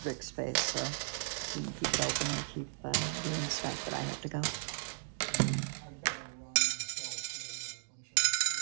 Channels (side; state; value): left; silent; digital silence